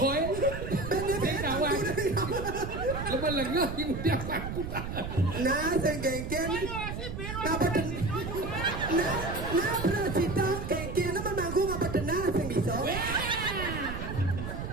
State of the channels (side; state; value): right; noise; rumble, 6 dB below the sound